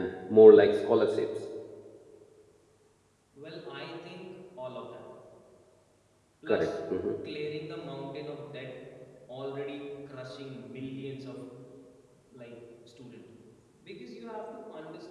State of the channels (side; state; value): both; identical; correlation 1.00